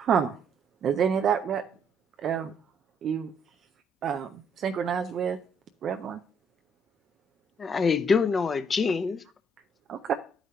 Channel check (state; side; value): normal; both; correlation 0.69